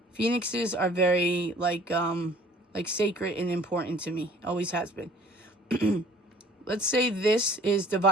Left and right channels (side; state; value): both; normal; correlation 0.53